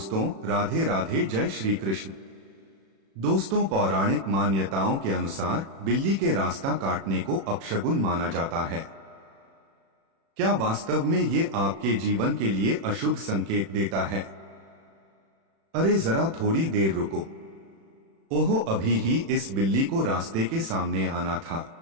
राधे राधे, जय श्री कृष्ण। दोस्तों, पौराणिक मान्यताओं के अनुसार बिल्ली के रास्ता काटने को अपशगुन माना जाता है। क्या वास्तव में ये आपके जीवन के लिए अशुभ संकेत देता है? अरे जरा थोड़ी देर रुको। ओहो, अभी ही इस बिल्ली को रास्ते के सामने आना था।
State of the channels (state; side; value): late; left; 36 ms